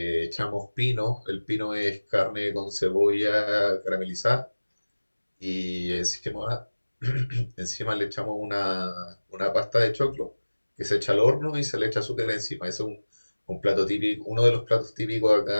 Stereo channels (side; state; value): both; inverted; correlation -1.00